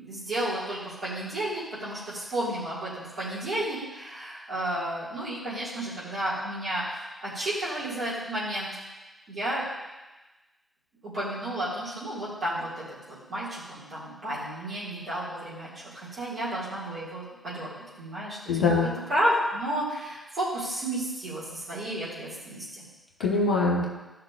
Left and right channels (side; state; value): both; normal; correlation 0.54